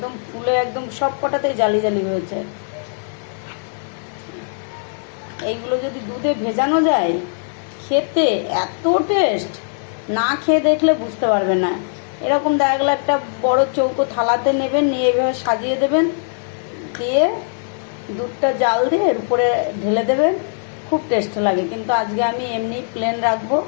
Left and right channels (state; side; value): silent; right; digital silence